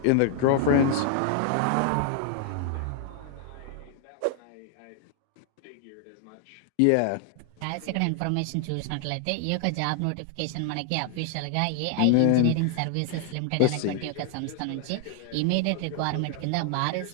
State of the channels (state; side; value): different; both; correlation 0.00